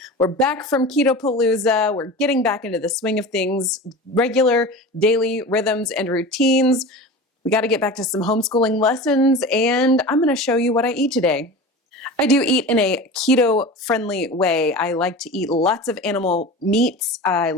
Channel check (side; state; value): both; normal; correlation 0.32